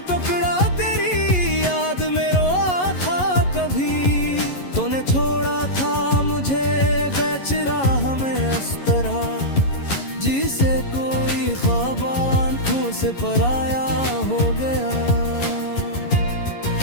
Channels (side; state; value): right; late; 11 ms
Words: टुकड़ा तेरी याद में रोआ था कभी। तूने छोड़ा था मुझे बेच राह में अस्तरा। जिसे कोई ख्वाब आंखों से पराया हो गया।